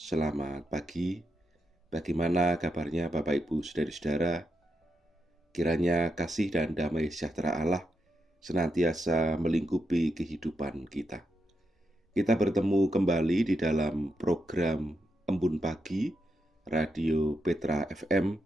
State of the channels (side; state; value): both; normal; correlation 0.84